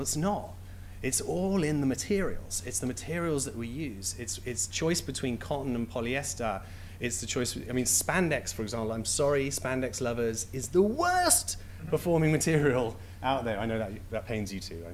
it's not. It's all in the materials. It's the materials that we use. It's choice between cotton and polyester. It's the choice, I mean, spandex, for example, I'm sorry, spandex lovers, is the worst performing material out there. I know that pains you too, I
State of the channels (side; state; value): both; identical; correlation 1.00